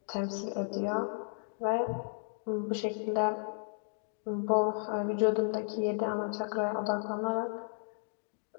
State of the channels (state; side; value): silent; right; digital silence